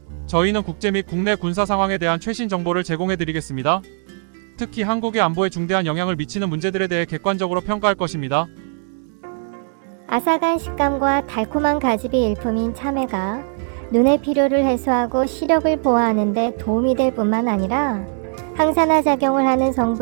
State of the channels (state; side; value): silent; left; 58 dB below the other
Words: 저희는 국제 및 국내 군사 상황에 대한 최신 정보를 제공해드리겠습니다. 특히 한국의 안보에 중대한 영향을 미치는 문제들에 대해 객관적으로 평가할 것입니다. 아삭한 식감과 달콤한 가집이 일품인 참외가 눈의 피로를 해소하고 시력을 보호하는 데 도움이 될 뿐만 아니라 항산화 작용을 하는